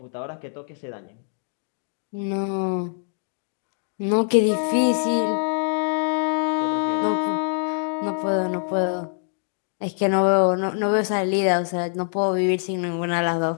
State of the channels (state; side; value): silent; right; 63 dB below the other